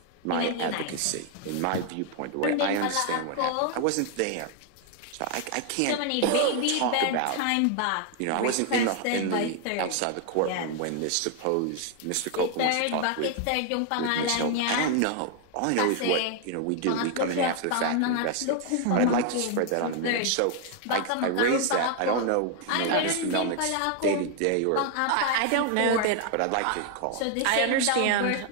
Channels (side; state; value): both; different; correlation 0.00